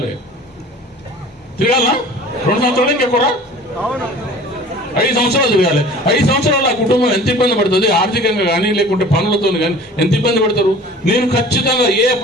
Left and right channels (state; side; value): normal; both; correlation 0.44